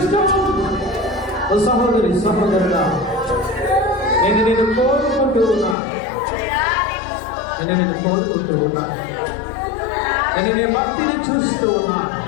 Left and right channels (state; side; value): drops out; right; at 5.8 s